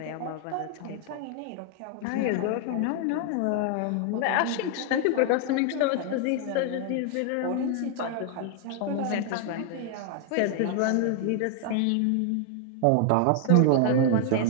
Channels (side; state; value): both; different; correlation 0.00